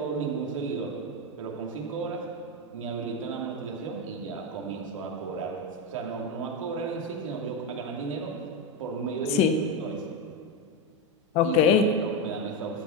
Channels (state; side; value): normal; both; correlation 0.10